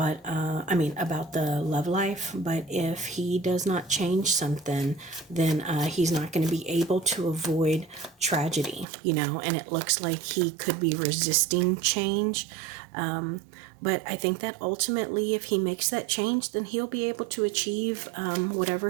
about the love life. But if he does not change something, then he's not going to be able to avoid tragedy, and it looks like he could be resisting change. But I think that ultimately, if he makes that change, then he'll be able to achieve whatever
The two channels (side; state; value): left; drops out; at 8.8 s